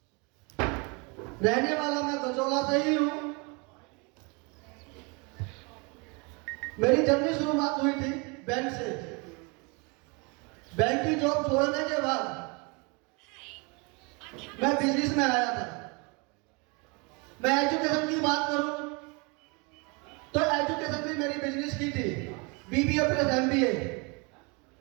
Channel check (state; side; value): quieter; left; 30.6 dB